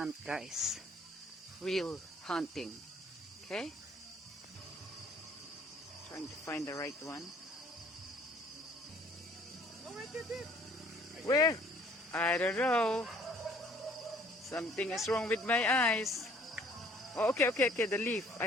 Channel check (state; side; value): normal; both; correlation 0.57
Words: guys. Real hunting. Okay? Trying to find the right one. Oh, right there. Where? I don't know. Something is wrong with my eyes. Oh, okay. The leaf.